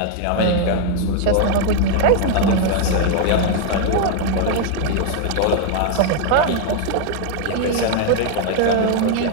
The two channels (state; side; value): different; both; correlation 0.00